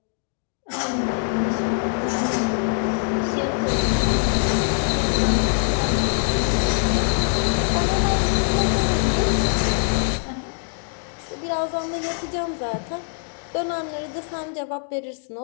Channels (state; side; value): silent; right; digital silence